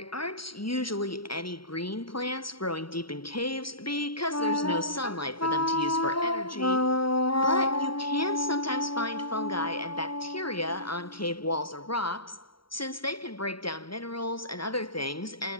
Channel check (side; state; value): right; late; 0.74 ms